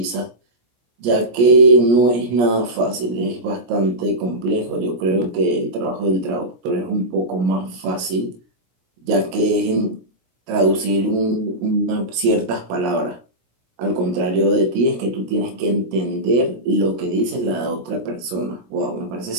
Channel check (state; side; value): late; left; 17 ms